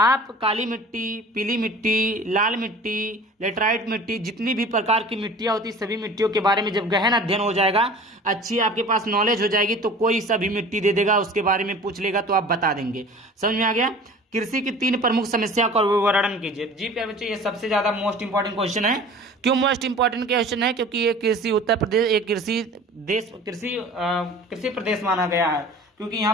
काली मिट्टी, पीली मिट्टी, लाल मिट्टी, लेटराइट मिट्टी, जितनी भी प्रकार की मिट्टियां होती सभी मिट्टियों के बारे में जब गहन अध्ययन हो जाएगा, अच्छी आपके पास नॉलेज हो जाएगी, तो कोई सभी मिट्टी दे देगा, उसके बारे में पूछ लेगा तो आप बता देंगे। समझ में आ गया। कृषि की 3 प्रमुख समस्या का वर्णन कीजिए। जी प्यारे बच्चों ये सबसे ज्यादा मोस्ट इंपॉर्टेंट क्वेश्चन है। क्यों मोस्ट इंपॉर्टेंट क्वेश्चन है, क्योंकि ये कृषि उत्तर प्रदेश एक कृषि प्रदेश माना गया है, क्योंकि यहाँ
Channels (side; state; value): both; normal; correlation 0.43